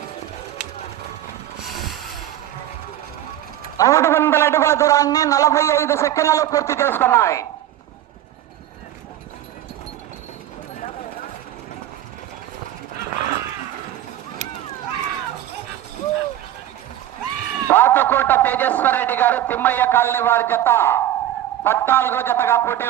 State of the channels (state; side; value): quieter; left; 12.5 dB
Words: మూడు వందల అడుగుల దూరాన్ని 45 సెకండ్లలో పూర్తి చేసుకున్నాయి. పాతకోట తేజేశ్వర రెడ్డి గారు తిమ్మయ్య కాలనీ వారి జత 14వ జతగా